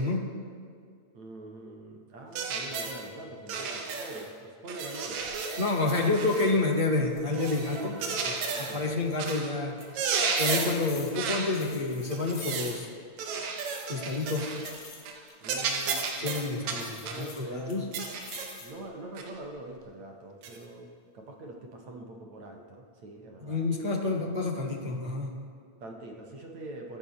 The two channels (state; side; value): late; left; 8.8 ms